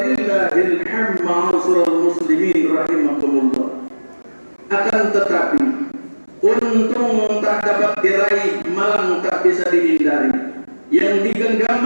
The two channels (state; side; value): inverted; both; correlation -1.00